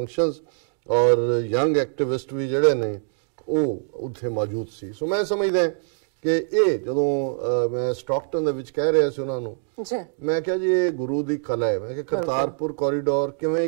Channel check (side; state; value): left; silent; digital silence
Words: ਔਰ ਯੰਗ ਐਕਟਿਵਿਸਟ ਵੀ ਜਿਹੜੇ ਨੇ ਉਹ ਉੱਥੇ ਮੌਜੂਦ ਸੀ। ਸੋ ਮੈਂ ਸਮਝਦਾ ਕਿ ਇਹ ਜਦੋਂ ਮੈਂ ਸਟਾਕਟਨ ਦੇ ਵਿੱਚ ਕਹਿ ਰਿਹਾ ਸੀ ਉਹਨਾਂ ਨੂੰ, ਮੈਂ ਕਿਹਾ ਜੀ ਇਹ ਗੁਰੂ ਦੀ ਕਲਾ ਹੈ। ਮੈਂ ਕਿਹਾ ਕਰਤਾਰਪੁਰ ਕੋਰੀਡੋਰ ਕਿਵੇਂ